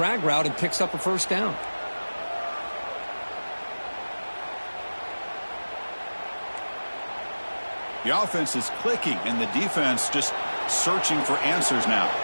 route and picks up a first down. The offense is clicking, and the defense just searching for answers now.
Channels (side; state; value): both; inverted; correlation -1.00